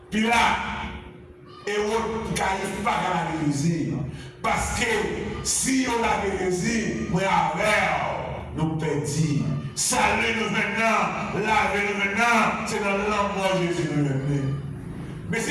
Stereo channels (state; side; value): identical; both; correlation 1.00